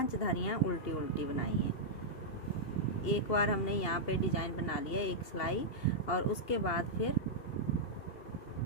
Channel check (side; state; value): right; late; 2.8 ms